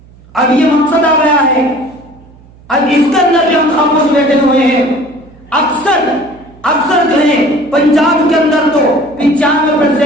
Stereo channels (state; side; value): noise; right; hum, 25 dB below the sound